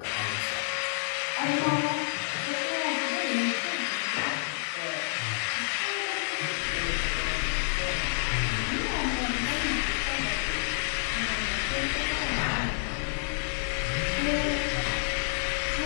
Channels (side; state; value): right; silent; digital silence